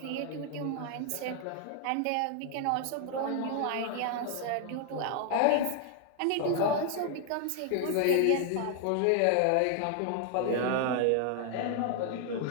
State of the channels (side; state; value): both; different; correlation 0.00